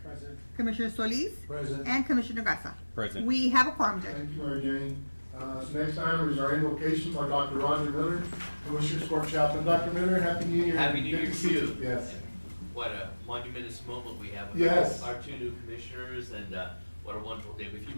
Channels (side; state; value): both; inverted; correlation -1.00